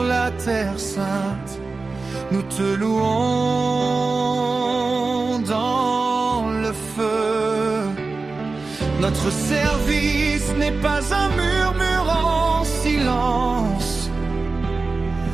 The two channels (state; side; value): quieter; left; 3.9 dB